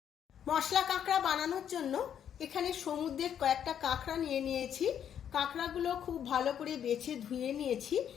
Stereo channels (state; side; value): quieter; right; 9.1 dB